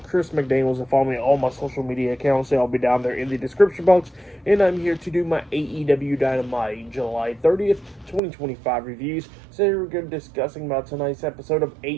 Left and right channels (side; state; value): left; drops out; at 8.2 s